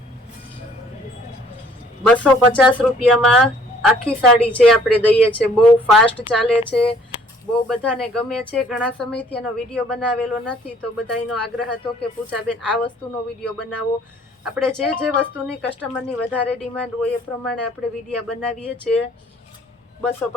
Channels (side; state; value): both; normal; correlation 0.58